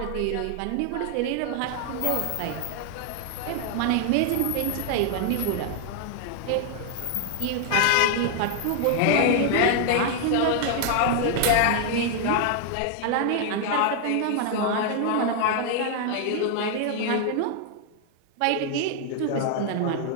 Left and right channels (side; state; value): both; different; correlation 0.00